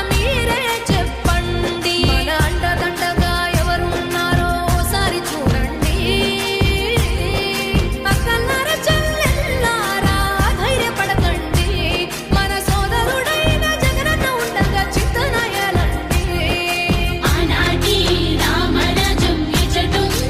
మీరే చెప్పండి మన అండదండగా ఎవరు ఉన్నారో ఓసారి చూడండి అక్కలారా చెల్లెల్లారా ధైర్యపడకండి మన సోదరుడైన జగనన్న ఉండగా చిత్తనయలండి ఆనాటి రామరాజ్యం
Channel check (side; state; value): both; identical; correlation 1.00